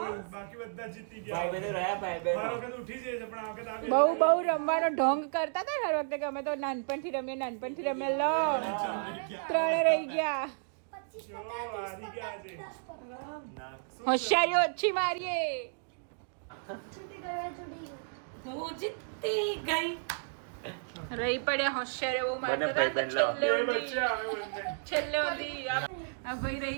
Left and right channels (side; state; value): left; silent; digital silence